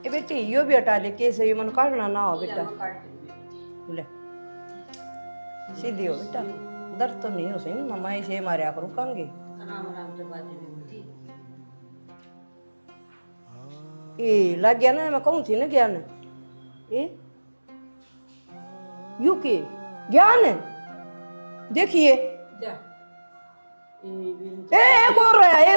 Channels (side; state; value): both; inverted; correlation -1.00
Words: ए बेटी यो भी हटा ले, कैसे ये मन काटना ना हो बेटा। मैं काट दूंगी। ले सीधी हो बेटा, दर्द तो नहीं हो सही मम्मा, इसे मारे करूँ कांगे। आराम आराम से बातें भी बेटी। ए लग गया ना, मैं कहूँ थी ना ज्ञान ए यू के ज्ञान देखिए जा। एक और रहा,